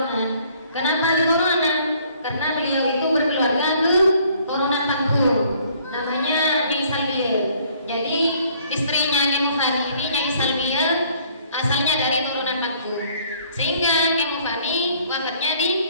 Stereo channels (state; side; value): inverted; both; correlation -0.60